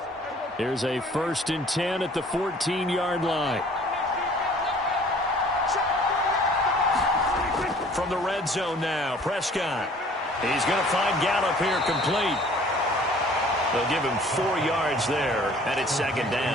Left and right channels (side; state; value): both; normal; correlation 0.52